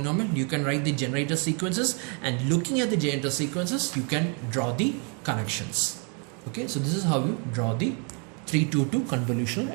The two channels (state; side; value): quieter; left; 37.2 dB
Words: you can write the generator sequences. And looking at the generator sequences, you can draw the connections. Okay, so this is how you draw the 322 convolutional